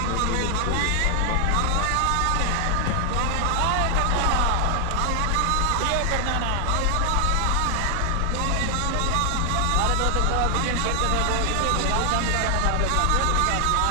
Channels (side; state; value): both; different; correlation 0.00